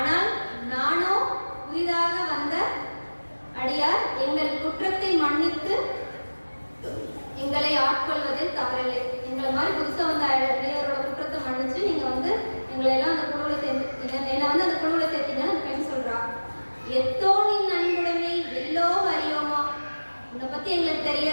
நானோ புதிதாக வந்த அடியார், எங்கள் குற்றத்தை மன்னித்து எங்களை ஆட்கொள்வதில் தவறில்லை. எங்களை மாதிரி புதுசா வந்த அடியாரோட குற்றத்தை மன்னிச்சு நீங்க வந்து எங்களை எல்லாம் அந்த குழுவில் சேர்த்துட்டீங்க, என்னை வந்து அந்த குழுவில் சேர்த்தீங்கன்னு அந்த பெண் சொல்றா. எத்தோனின் அன்புடைமை எல்லோ அறியோமா, உன்னை பத்தி எங்களுக்கு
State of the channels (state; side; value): inverted; both; correlation -1.00